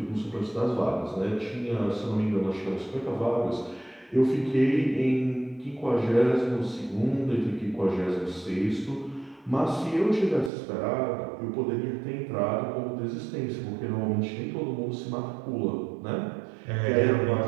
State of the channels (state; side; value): drops out; left; at 10.5 s